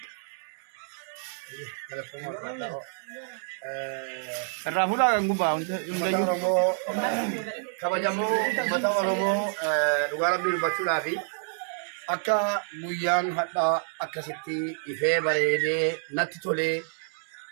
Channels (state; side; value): silent; left; 59 dB below the other